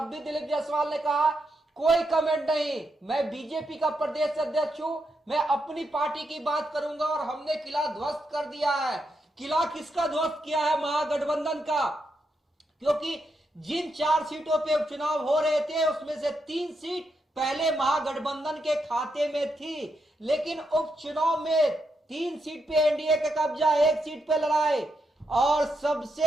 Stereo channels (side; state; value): both; normal; correlation 0.82